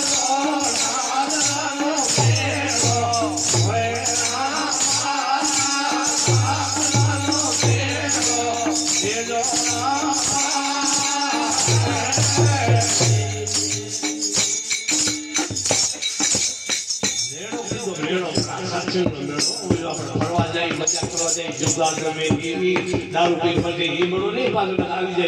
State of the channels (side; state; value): both; identical; correlation 1.00